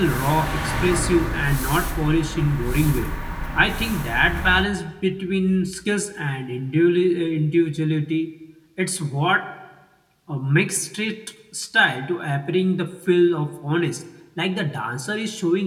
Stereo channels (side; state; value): both; identical; correlation 1.00